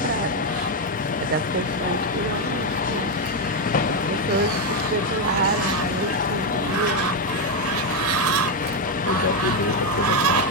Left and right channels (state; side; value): normal; both; correlation 0.05